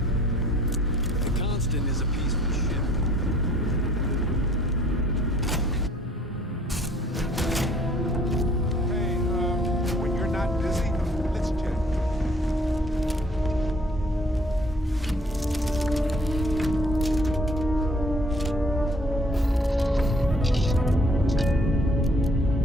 Captain is a peaceful ship. When you're not busy, let's chat.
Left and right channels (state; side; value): normal; both; correlation 0.59